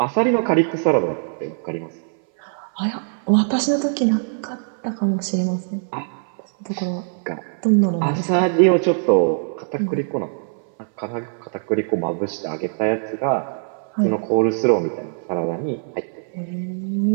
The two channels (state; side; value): silent; left; 59 dB below the other